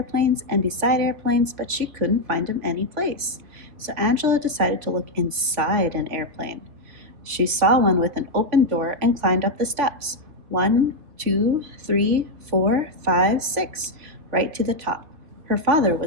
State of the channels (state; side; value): late; left; 3.1 ms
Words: and beside airplanes, but she couldn't find him any place. So Angela decided to look inside an airplane. She saw one with an open door and climbed up the steps. 1, 2, 3, 4, 5, 6, right to the top. Her father